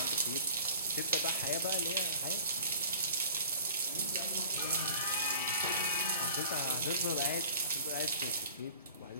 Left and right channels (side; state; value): both; inverted; correlation -0.46